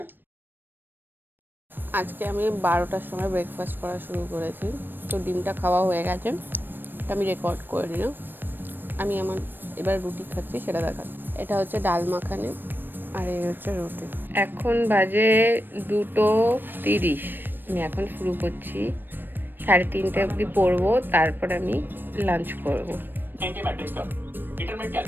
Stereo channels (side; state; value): left; late; 0.094 ms